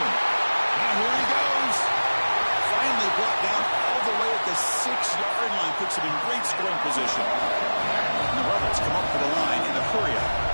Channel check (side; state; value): both; inverted; correlation -1.00